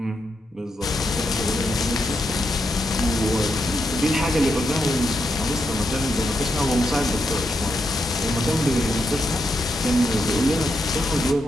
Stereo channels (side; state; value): both; normal; correlation 0.83